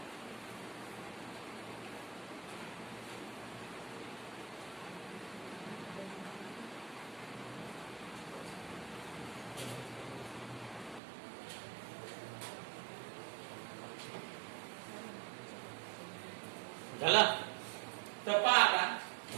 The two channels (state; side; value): drops out; left; at 11.0 s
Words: झाला. तर पहा आता,